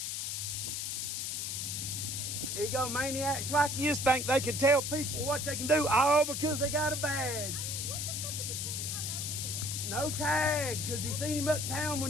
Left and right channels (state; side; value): noise; left; hiss, 2 dB below the sound